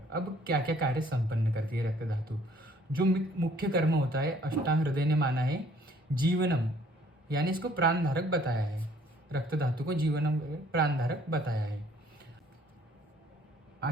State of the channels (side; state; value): both; normal; correlation 0.59